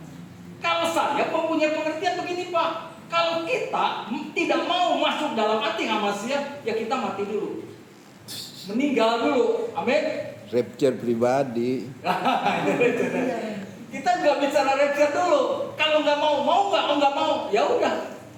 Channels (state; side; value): identical; both; correlation 1.00